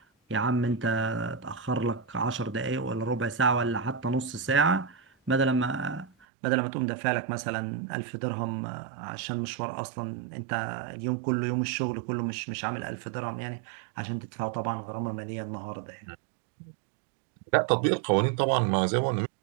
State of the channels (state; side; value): drops out; left; at 6.1 s